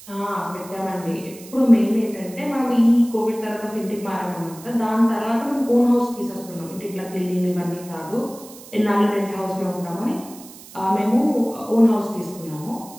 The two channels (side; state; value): right; noise; hiss, 19 dB below the sound